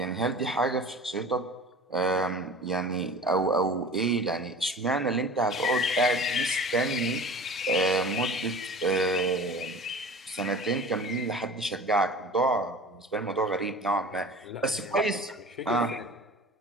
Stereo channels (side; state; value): both; normal; correlation 0.40